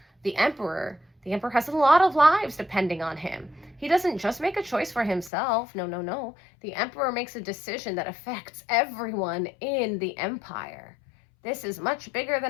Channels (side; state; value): right; drops out; at 5.3 s